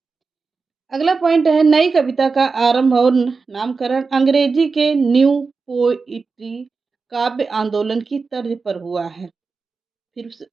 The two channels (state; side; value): quieter; left; 4.5 dB